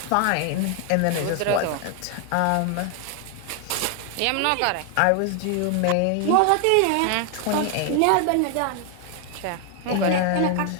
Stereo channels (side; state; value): both; different; correlation 0.00